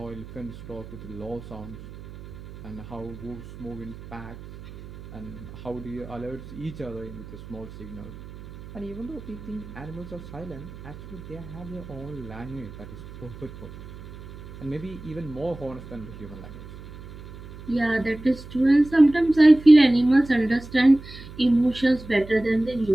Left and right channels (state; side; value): noise; right; hum, 15 dB below the sound